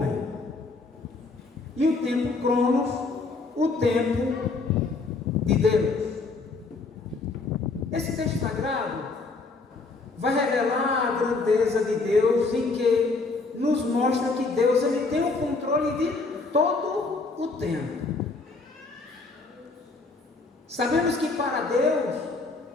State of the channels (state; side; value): quieter; right; 3.8 dB